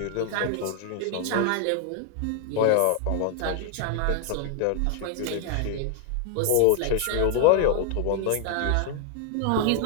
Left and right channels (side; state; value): both; different; correlation -0.01